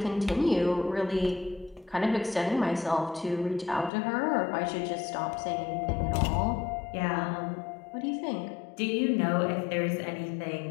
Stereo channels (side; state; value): right; drops out; at 3.9 s